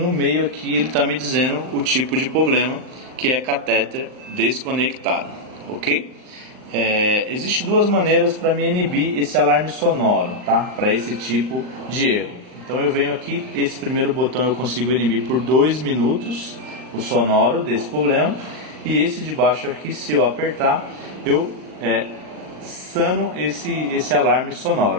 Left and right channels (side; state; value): left; late; 39 ms